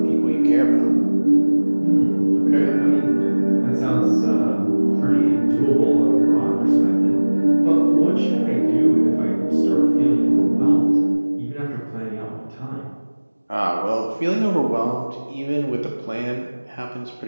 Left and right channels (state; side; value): inverted; both; correlation -1.00